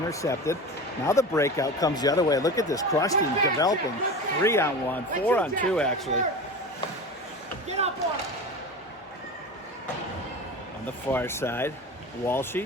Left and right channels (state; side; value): normal; both; correlation 0.30